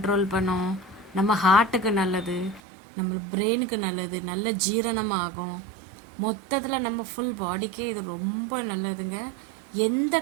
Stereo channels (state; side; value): drops out; left; at 2.6 s